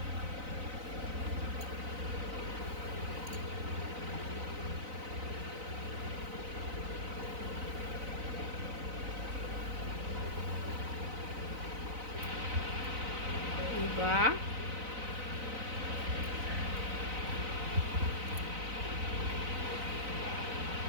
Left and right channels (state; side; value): late; left; 4.0 ms